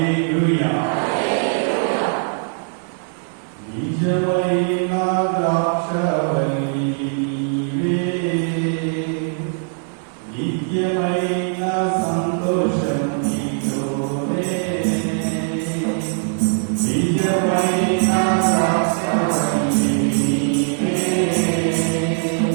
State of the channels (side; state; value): left; silent; 60 dB below the other